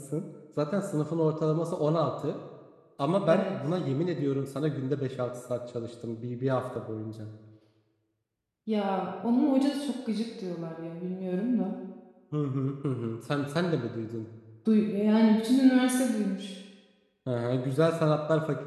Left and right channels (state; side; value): identical; both; correlation 1.00